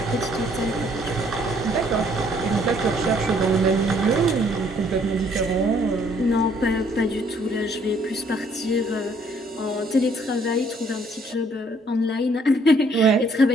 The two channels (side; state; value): both; normal; correlation 0.64